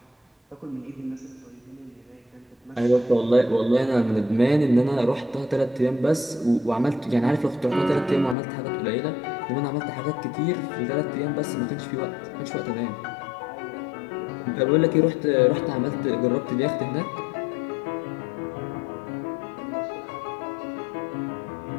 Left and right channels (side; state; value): right; drops out; at 8.3 s